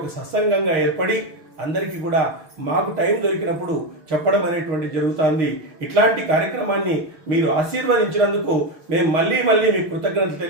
సత్సంగంగా ఏర్పడి అందరికీ కూడా మాకు టైం దొరికినప్పుడు చెప్పడం అనేటువంటి జరుగుతుంది. ఇట్లాంటి కార్యక్రమాన్ని మీరు ఆశీర్వదించినందుకు మేము మళ్ళీ మీకు కృతజ్ఞతలు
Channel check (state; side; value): late; left; 6.4 ms